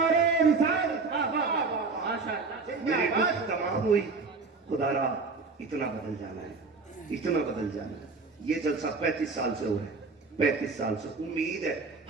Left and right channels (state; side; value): quieter; left; 4.2 dB